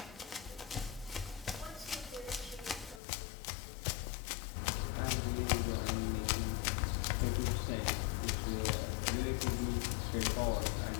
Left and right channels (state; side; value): drops out; right; at 3.0 s